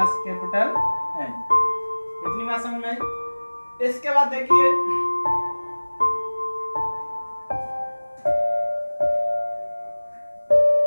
capital N. इतनी बात समझ में आई। इसके बाद देखिए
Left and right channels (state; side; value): inverted; both; correlation -1.00